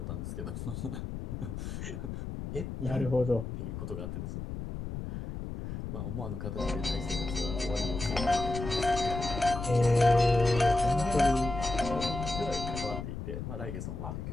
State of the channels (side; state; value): left; noise; rumble, 6 dB below the sound